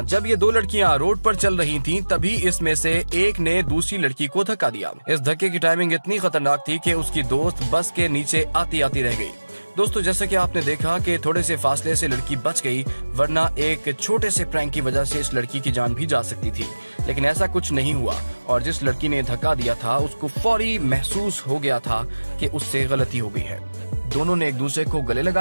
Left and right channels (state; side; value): inverted; both; correlation -1.00